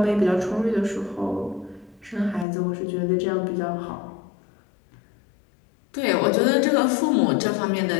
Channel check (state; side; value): drops out; right; at 2.5 s